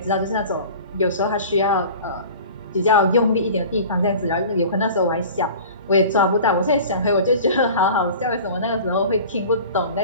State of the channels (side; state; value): both; inverted; correlation -0.41